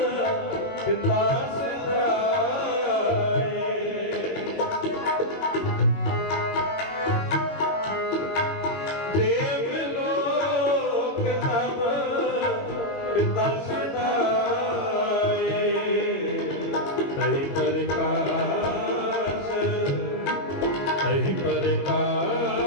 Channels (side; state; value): right; late; 21 ms